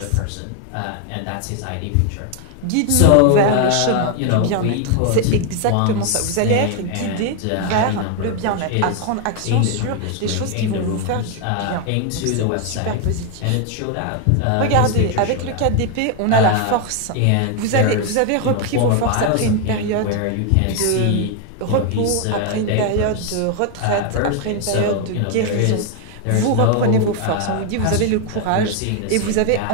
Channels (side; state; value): both; different; correlation 0.01